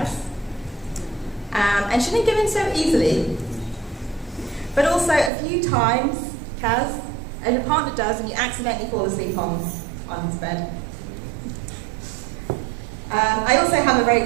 And she didn't give in so easily. But also a few times, Kaz, as your partner does, and you accidentally fall asleep on his bed. I also have a very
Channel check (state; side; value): drops out; left; at 5.3 s